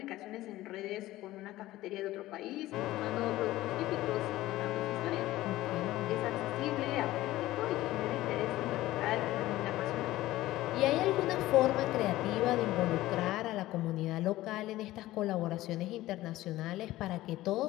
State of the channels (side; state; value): right; quieter; 16.3 dB